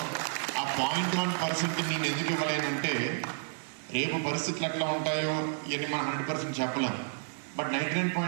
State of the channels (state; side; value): silent; left; 57 dB below the other